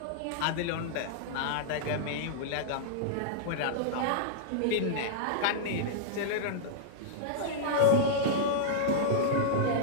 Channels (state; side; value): different; both; correlation -0.02